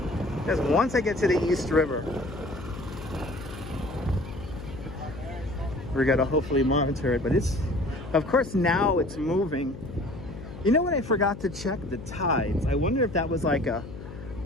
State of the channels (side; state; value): left; noise; hum, 12 dB below the sound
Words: Because once I get to the East River, we gotta hopefully monitor it, but of course now it's moving. You know what, I forgot to check the tides. I wonder if that was like a